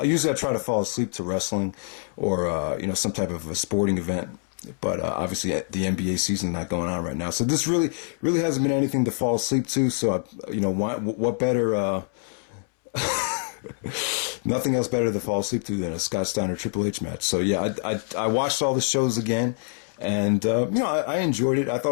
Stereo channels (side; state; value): right; silent; 61 dB below the other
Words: Usually I try to fall asleep to wrestling or, some type of a sporting event. But obviously the NBA season is not going on right now. So this really hasn't been anything to fall asleep to. So, what better, nothing else better to fall asleep to than a Scott Steiner Triple H match. So, yeah, I watched all the shows again. And, I enjoyed it. I